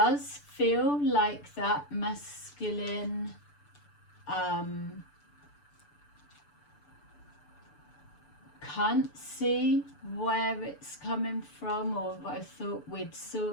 feel like that masculine can't see where it's coming from, or I thought we'd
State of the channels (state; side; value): late; right; 6.8 ms